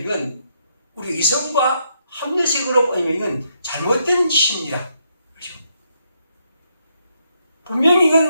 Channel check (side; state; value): both; inverted; correlation -0.76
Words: 우리 이성과 합리적으로 보면 이건 잘못된 시입니다. 그렇죠? 분명히